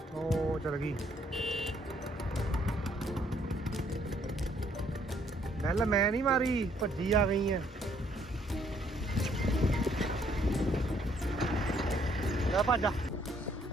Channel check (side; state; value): both; normal; correlation 0.67